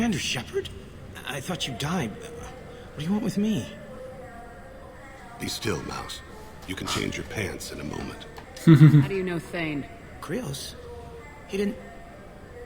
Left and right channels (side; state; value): both; identical; correlation 1.00